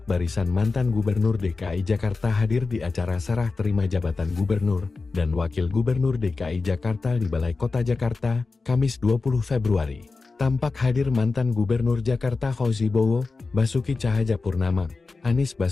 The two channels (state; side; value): quieter; right; 4.0 dB